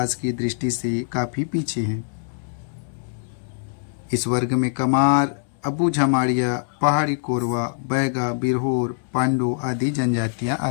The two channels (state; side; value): silent; right; 61 dB below the other